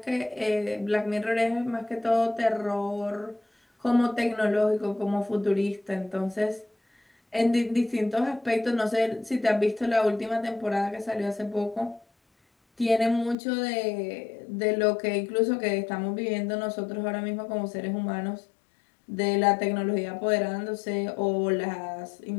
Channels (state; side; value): drops out; right; at 13.4 s